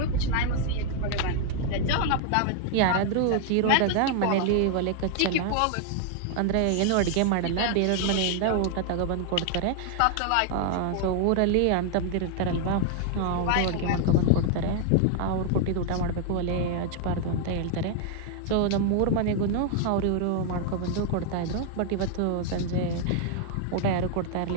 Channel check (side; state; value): both; different; correlation 0.00